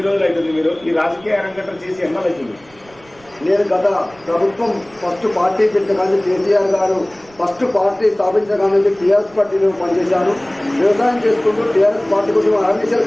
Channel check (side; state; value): right; noise; rumble, 28 dB below the sound